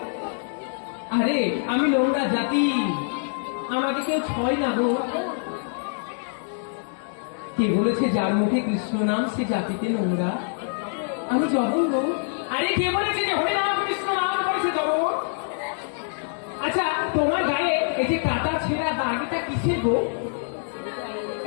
আরে আমি নোংরা জাতি, আমাকে কেউ ছয় না গো। কে বলেছে যার মুখে কৃষ্ণ নাম সে জাতিতে নোংরা? আমি জঘন্য। আরে কে বলেছে যে হরে নাম কৃষ্ণ নাম করেছে জঘন্য? আচ্ছা তোমার গায়ে এই যে কাটা ছেঁড়া দাগ, এটা কিসের গো?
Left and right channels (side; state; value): right; silent; digital silence